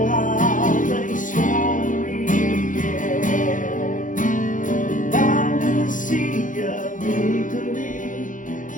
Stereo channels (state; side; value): late; right; 0.38 ms